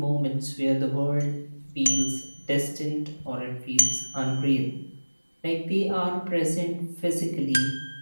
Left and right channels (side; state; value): both; inverted; correlation -1.00